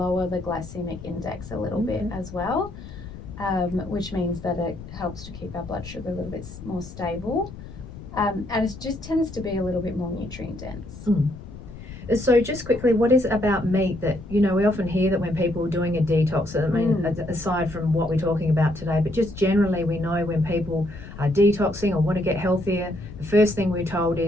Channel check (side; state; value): left; noise; rumble, 14 dB below the sound